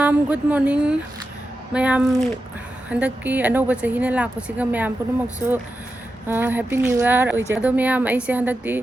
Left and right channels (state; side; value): normal; both; correlation 0.90